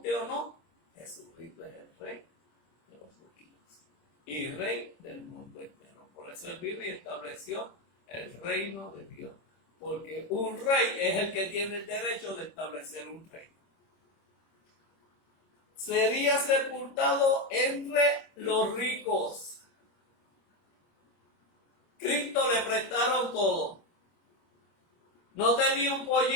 o no, Jesucristo es el rey de los judíos y rey del mundo entero. Por eso él vino y estableció el reino de Dios, porque un rey es el que tiene el derecho de establecer un reino. Sería sepultado entre los ricos. Cristo le prestaron todo. No tenía un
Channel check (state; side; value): late; right; 26 ms